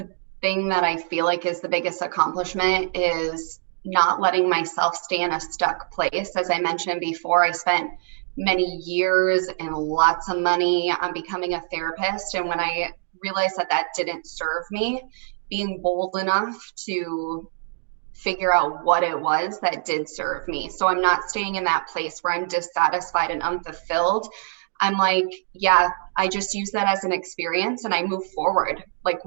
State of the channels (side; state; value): left; silent; 63 dB below the other